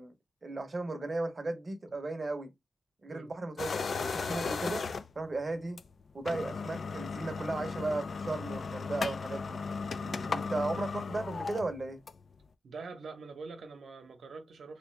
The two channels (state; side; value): normal; both; correlation 0.89